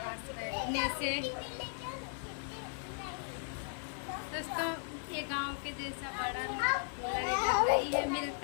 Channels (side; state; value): right; silent; 53 dB below the other